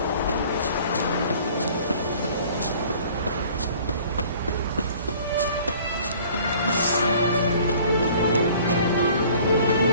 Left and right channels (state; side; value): inverted; both; correlation -0.51